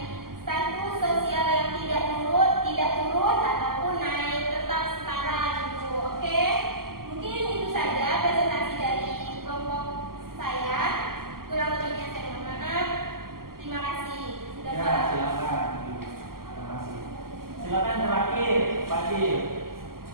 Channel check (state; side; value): late; left; 0.92 ms